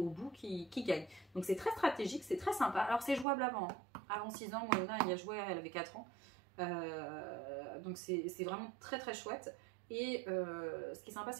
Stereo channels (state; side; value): drops out; left; at 3.2 s